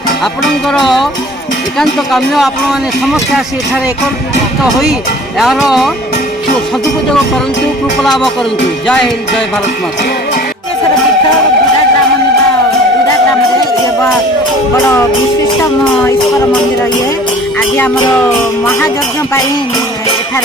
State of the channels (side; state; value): both; normal; correlation 0.47